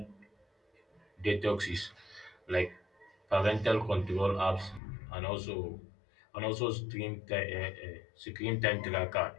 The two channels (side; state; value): right; drops out; at 4.8 s